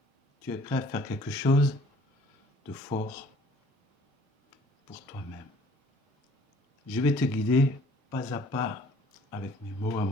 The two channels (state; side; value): normal; both; correlation 0.55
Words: Tu es prêt à faire quelque chose de fort pour toi-même. Je vais te guider pas à pas avec mes mots à